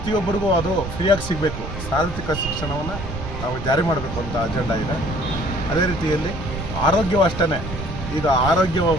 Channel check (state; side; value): noise; right; rumble, 7 dB below the sound